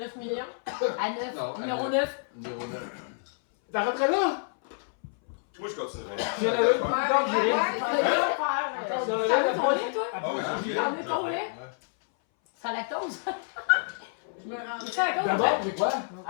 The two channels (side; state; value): right; silent; 59 dB below the other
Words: millions? À 9. Non, Numéro 9. Numéro 9. T'arrêterais là? Moi, je continuerai. J'ai la même temps que j'ai rien. T'en veux ton lait, toi? Ah oui, j'ai T'en veux ton lait? Sans lactose? Je me rendrais. Sans lactose? D'abord, c'est quoi?